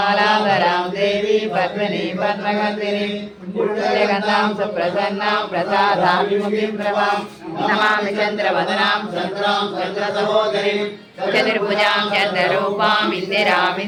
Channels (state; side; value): identical; both; correlation 1.00